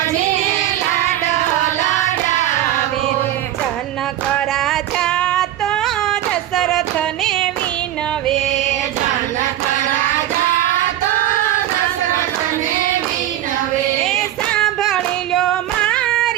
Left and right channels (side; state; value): left; quieter; 12.8 dB